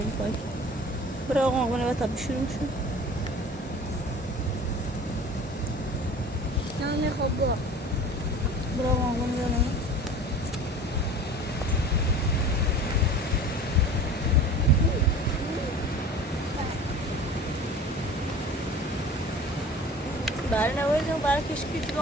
برای آقا آقا نباید تبی شروع شد Nane hobo. برای آقا آقا نباید برای نباید برای کشکی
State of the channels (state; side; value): normal; both; correlation 0.41